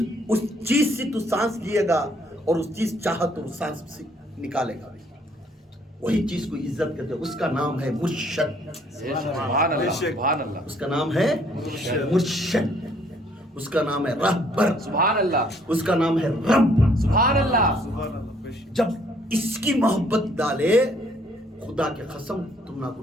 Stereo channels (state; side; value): normal; both; correlation 0.64